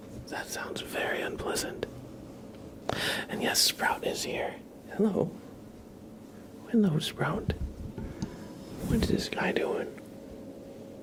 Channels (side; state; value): both; identical; correlation 1.00